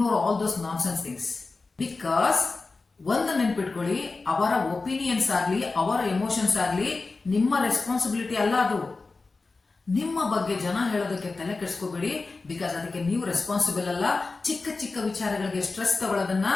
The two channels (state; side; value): quieter; right; 3.8 dB